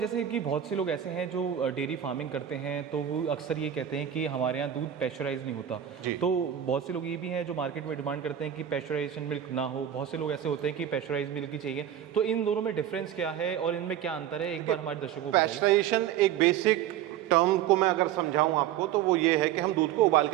कि बहुत से लोग ऐसे हैं जो डेयरी फार्मिंग करते हैं, तो वो अक्सर ये कहते हैं कि हमारे यहाँ दूध पैस्चराइज नहीं होता। तो बहुत से लोग ये भी हैं जो मार्केट में डिमांड करते हैं कि पैस्चराइजेशन मिल्क ना हो, बहुत से लोग ऐसे होते हैं कि पैस्चराइज मिल्क ही चाहिए। तो इन दोनों में डिफरेंस क्या है और इनमें क्या अंतर है, एक बार हमारे दर्शकों को बताइए। पैस्चराइजेशन एक बेसिक टर्म को मैं अगर समझाऊं आपको, तो वो ये है कि हम दूध को उबाल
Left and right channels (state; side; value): quieter; left; 10.5 dB